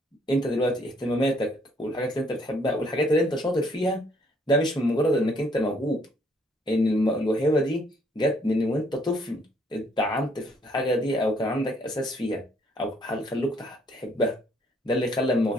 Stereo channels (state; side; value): normal; both; correlation 0.66